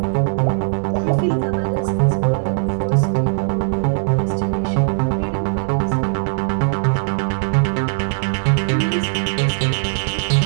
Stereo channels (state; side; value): silent; left; digital silence